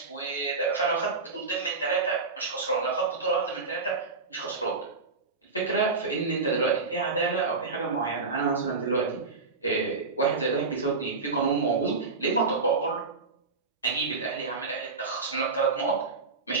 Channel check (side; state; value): left; quieter; 4.2 dB